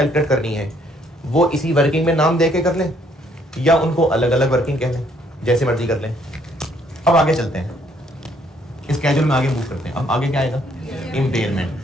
करनी है, वो इसी वर्किंग में नाम दे के कर लें, या उनको अलग अलग वर्किंग कह लें, जैसे मर्जी कर लें। अब आगे चलते हैं, इस स्केड्यूल में आगे मूव करते हैं। अब आगे क्या आएगा? इंपेयरमेंट।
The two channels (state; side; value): normal; both; correlation 0.67